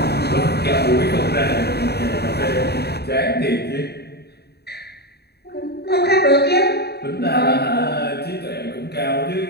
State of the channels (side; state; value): right; late; 0.47 ms